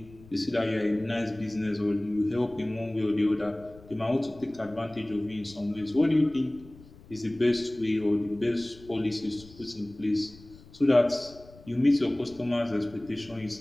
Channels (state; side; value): noise; left; rumble, 22 dB below the sound